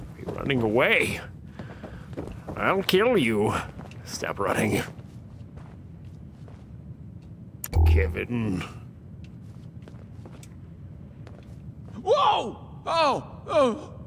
You're running away. I'll kill you. Stop running. Kevin. Whoa! Oh,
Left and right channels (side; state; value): both; identical; correlation 1.00